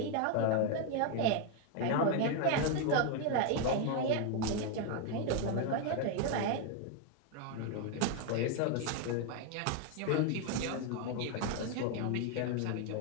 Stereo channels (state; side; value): different; both; correlation 0.01